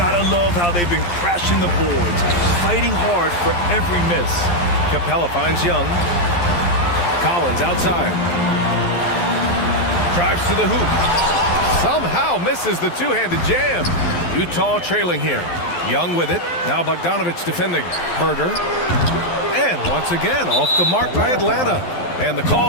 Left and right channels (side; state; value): right; late; 11 ms